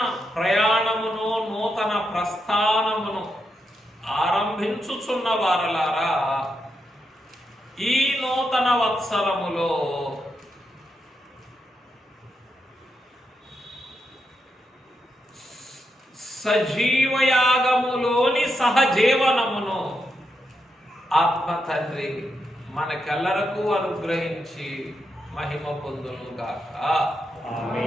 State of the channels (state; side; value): normal; both; correlation 0.84